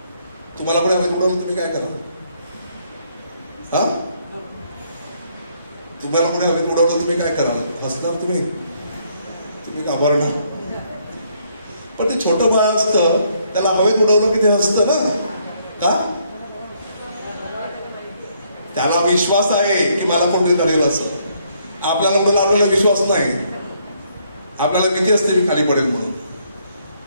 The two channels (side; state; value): both; inverted; correlation -0.70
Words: तुम्हाला पण हवेत उडवलं तुम्ही काय कराल? हा, तुम्हाला पुढे हवेत उडवलं तुम्ही काय कराल? हसणार तुम्ही, तुम्ही घाबरणार. पण ते छोटं बाळ असतं त्याला हवेत उडवलं की ते हसतं ना. का? त्याला विश्वास आहे की मला कोणतरी धरेल असं. आपल्याला उडवलं, आपल्याला विश्वास नाही, आपल्याला भीती असते मी खाली पडेल म्हणून.